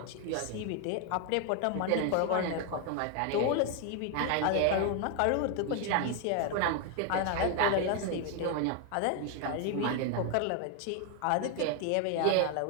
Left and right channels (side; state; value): both; different; correlation 0.01